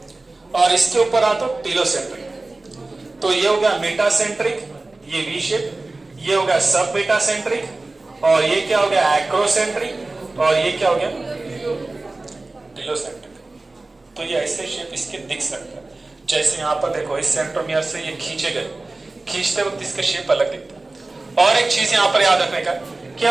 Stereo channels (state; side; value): quieter; left; 3.2 dB